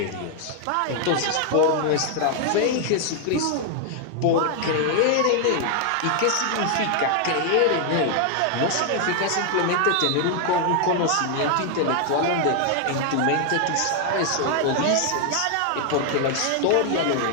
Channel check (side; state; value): both; different; correlation 0.00